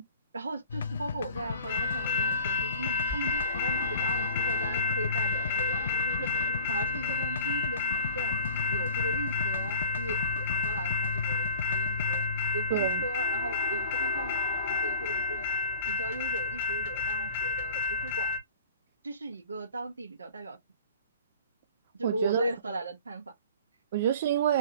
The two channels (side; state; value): both; inverted; correlation -0.43